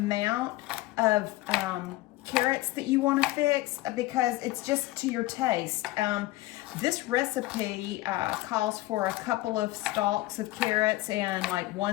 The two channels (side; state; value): right; quieter; 18.1 dB